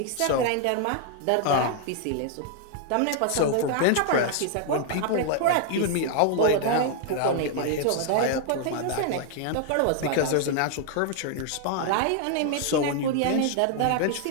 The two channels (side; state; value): both; different; correlation 0.00